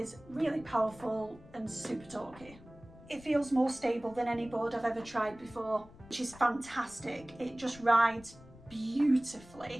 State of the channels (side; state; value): left; noise; rumble, 21 dB below the sound